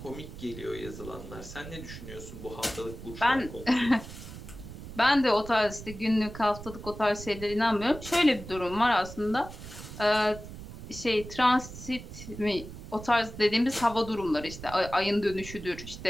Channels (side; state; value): right; noise; rumble, 12 dB below the sound